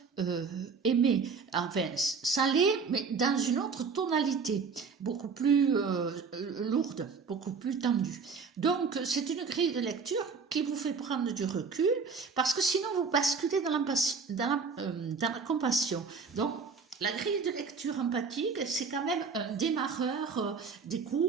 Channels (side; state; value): left; quieter; 5.2 dB